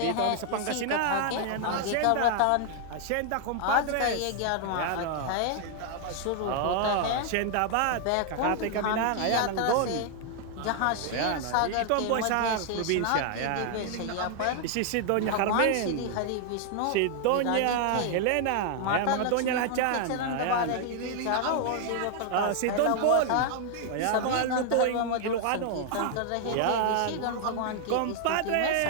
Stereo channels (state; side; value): different; both; correlation 0.00